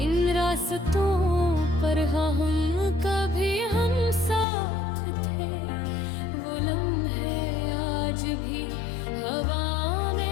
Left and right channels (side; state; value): right; drops out; at 4.5 s